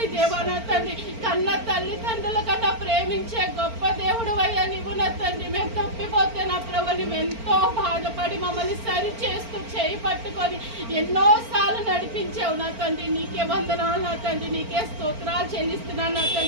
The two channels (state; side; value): late; left; 4.4 ms